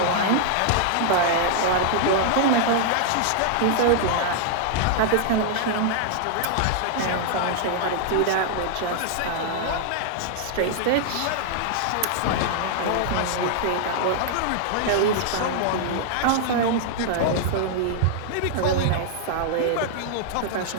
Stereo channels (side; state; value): both; different; correlation -0.01